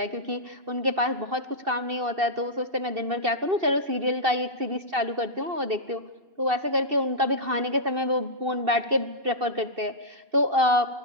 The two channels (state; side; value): late; left; 2.7 ms